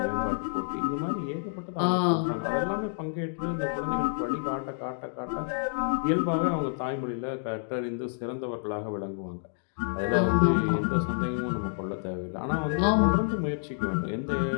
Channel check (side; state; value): right; silent; digital silence